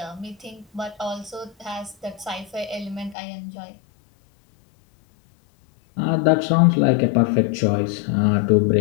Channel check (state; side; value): drops out; right; at 3.2 s